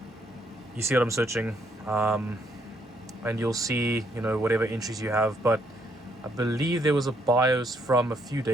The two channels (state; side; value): normal; both; correlation 0.72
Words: You see what I'm searching, and you'll see, you know, whatever entries you have. But I believe there was a BIOS from a few